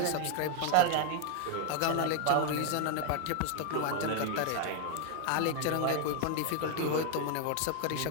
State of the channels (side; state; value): both; different; correlation 0.00